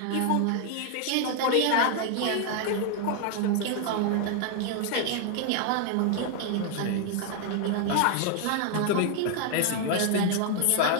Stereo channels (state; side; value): different; both; correlation 0.00